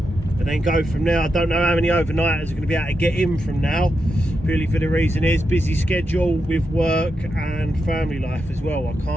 then go from there. I don't know how many overnighters are going to be able to get in from now, purely for the reason is busy schedule with work and family life as well. I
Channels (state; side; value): normal; both; correlation 0.86